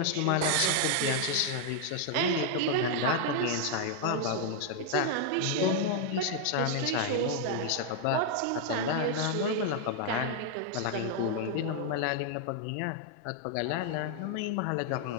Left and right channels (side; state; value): both; different; correlation 0.00